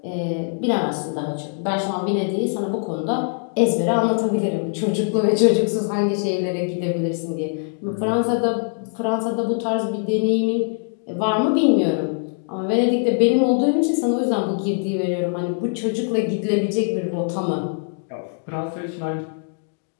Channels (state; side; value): silent; right; 64 dB below the other